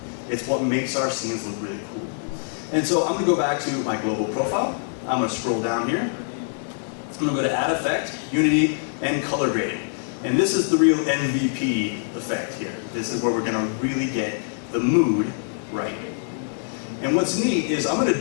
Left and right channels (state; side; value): silent; right; digital silence